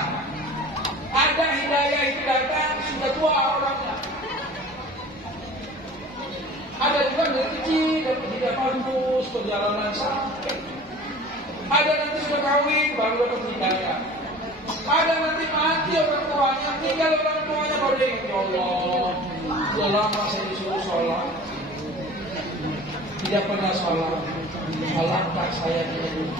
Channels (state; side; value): normal; both; correlation 0.42